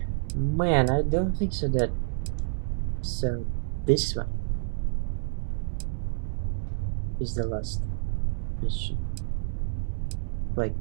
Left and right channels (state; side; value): silent; left; digital silence